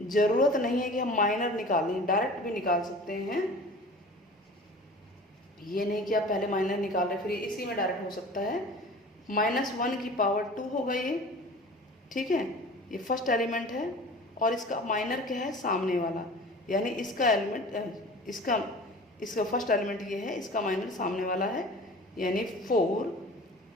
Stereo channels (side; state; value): both; normal; correlation 0.41